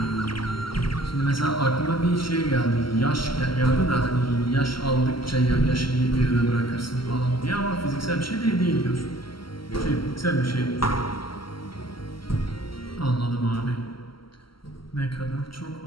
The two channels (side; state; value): right; late; 0.74 ms